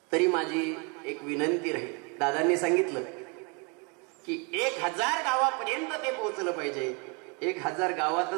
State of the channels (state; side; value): quieter; left; 33.0 dB